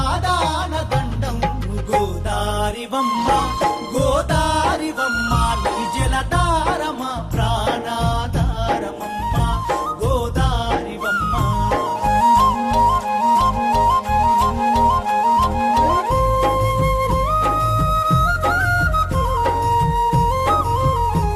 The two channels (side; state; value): both; identical; correlation 1.00